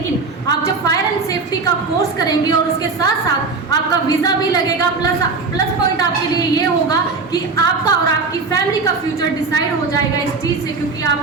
आप जब फायर एंड सेफ्टी का कोर्स करेंगे और उसके साथ साथ आपका वीज़ा भी लगेगा, प्लस पॉइंट आपके लिए ये होगा कि आपका और आपकी फैमिली का फ्यूचर डिसाइड हो जाएगा इस चीज़ से, क्योंकि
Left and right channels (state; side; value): quieter; left; 4.3 dB